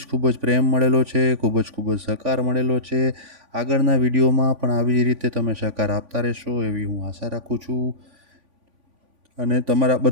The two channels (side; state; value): left; late; 3.5 ms